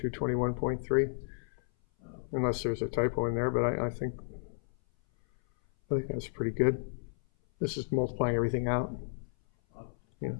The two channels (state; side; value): silent; right; 56 dB below the other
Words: Unless there's a typo in there, but I think that's pretty good. This is multiplying everything out. You know,